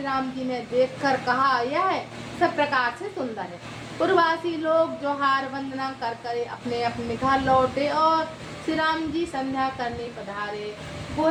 राम जी ने देखकर कहा, यह सब प्रकार से सुंदर है। पूर्ववासी लोग जोहार वंदना कर कर अपने अपने घर लौटे और श्री राम जी संध्या करने पधारे।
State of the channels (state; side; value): identical; both; correlation 1.00